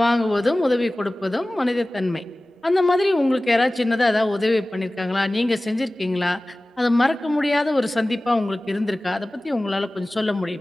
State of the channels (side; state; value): both; normal; correlation 0.97